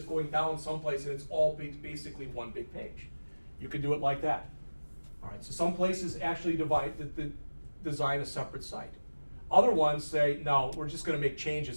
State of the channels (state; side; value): inverted; both; correlation -1.00